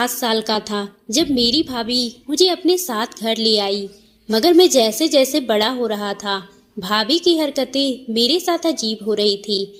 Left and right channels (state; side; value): identical; both; correlation 1.00